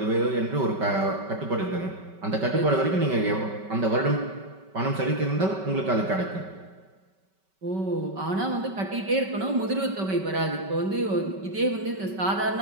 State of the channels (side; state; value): left; late; 5.2 ms